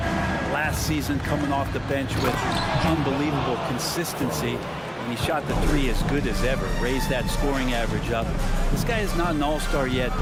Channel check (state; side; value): identical; both; correlation 1.00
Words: last season, coming off the bench with unbelievable consistency. and he shot the three as good as ever, raised that scoring average up. This guy is not an all-star yet,